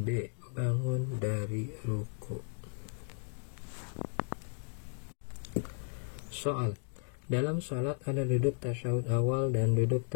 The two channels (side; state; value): right; silent; 55 dB below the other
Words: bangun dari ruku. Soal: dalam sholat ada duduk tasyahud awal dan duduk